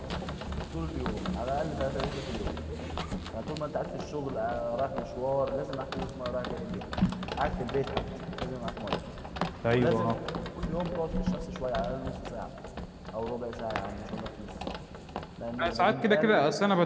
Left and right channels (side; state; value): both; identical; correlation 1.00